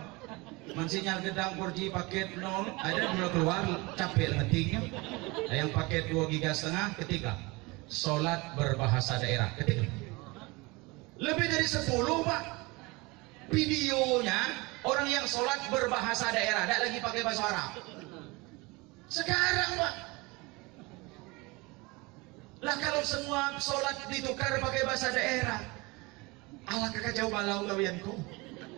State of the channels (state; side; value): quieter; left; 24.9 dB